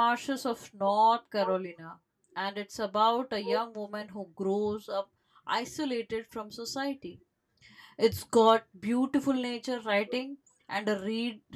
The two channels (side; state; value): both; identical; correlation 1.00